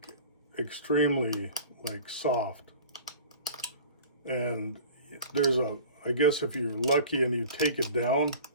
extremely like soft. And there's I guess if you're lucky and you take it down,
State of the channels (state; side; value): inverted; both; correlation -0.41